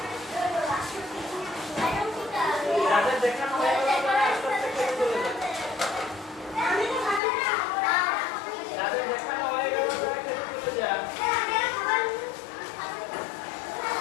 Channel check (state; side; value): drops out; right; at 7.2 s